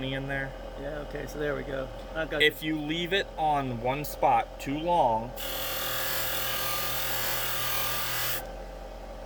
in there? Yeah. Okay. So there we go. I've got. If you leave it on one spot too long,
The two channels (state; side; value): identical; both; correlation 1.00